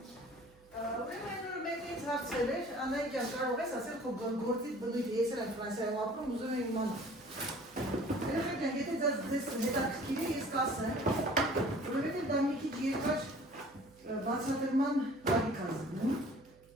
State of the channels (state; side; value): noise; right; hum, 28 dB below the sound